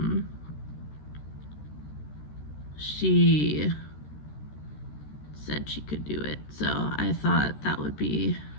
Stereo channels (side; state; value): right; late; 13 ms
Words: she said she could do it. So I thought that would be